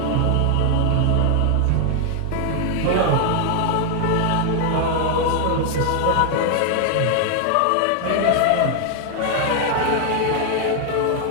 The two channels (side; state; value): both; different; correlation 0.00